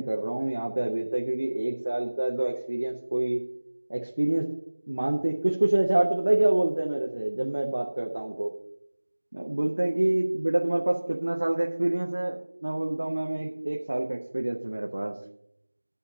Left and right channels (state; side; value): inverted; both; correlation -1.00